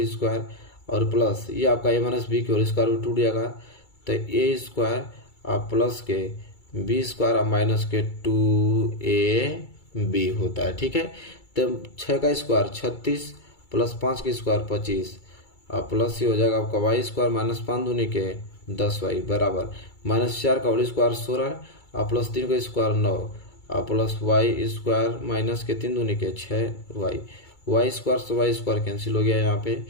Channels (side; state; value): right; late; 2.3 ms